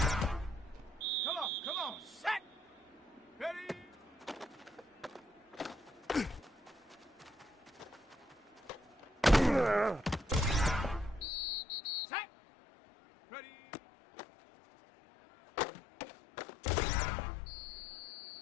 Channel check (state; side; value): drops out; right; at 11.3 s